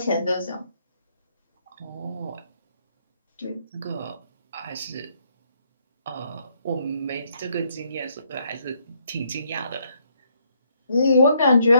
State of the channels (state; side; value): inverted; both; correlation -0.71